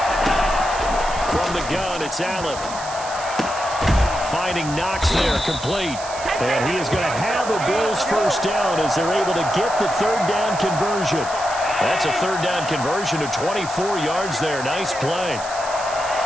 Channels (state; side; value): noise; right; hiss, 12 dB below the sound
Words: From the gun, it's Allen. Finding Knox there, complete. And he is going to have a Bills first down as they're able to get the 3rd down conversion. That's a 3rd down conversion of 24 yards there. Nice play.